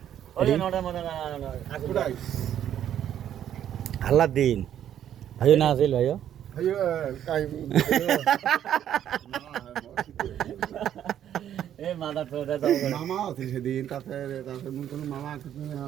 ওদিন হাল্লার দিন ভাইও না আছিল ভাইও মামা আছে সেদিন তাতে কোনো মামা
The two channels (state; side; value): quieter; left; 10.4 dB